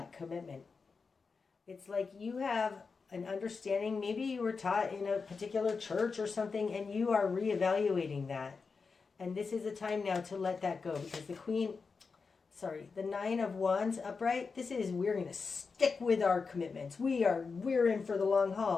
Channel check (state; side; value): quieter; right; 4.8 dB